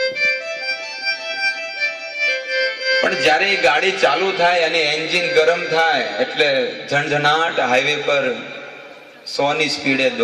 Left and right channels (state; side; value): identical; both; correlation 1.00